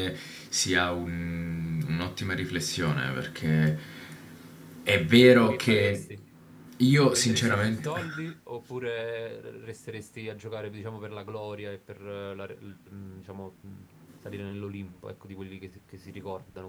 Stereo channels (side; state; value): both; identical; correlation 1.00